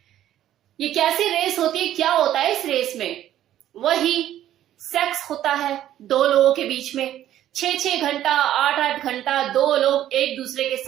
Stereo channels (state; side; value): quieter; left; 12.2 dB